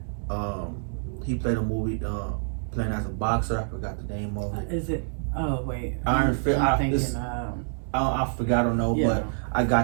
He played a movie playing as a boxer. I forgot the name of it. Is it? Oh wait, Iron Fist. I forgot. I don't know, but I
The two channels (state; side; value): silent; left; digital silence